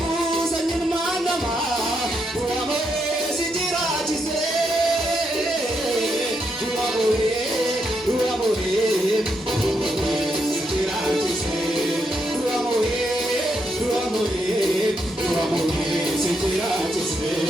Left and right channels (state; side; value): normal; both; correlation 0.80